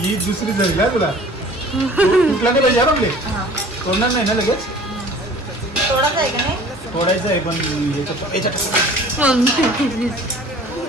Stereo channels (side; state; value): both; normal; correlation 0.48